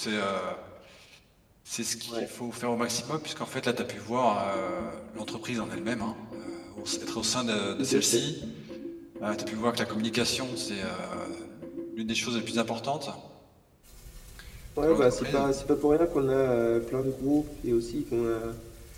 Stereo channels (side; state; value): both; identical; correlation 1.00